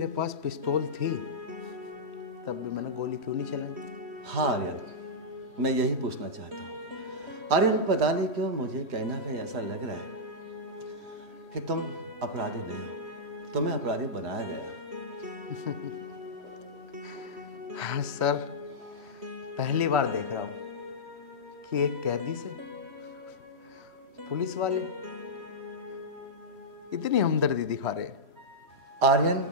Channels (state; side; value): late; left; 3.1 ms